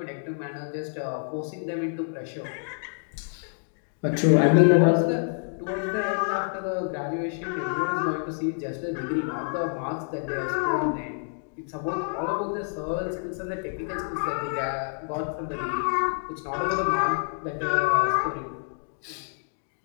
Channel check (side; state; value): right; silent; digital silence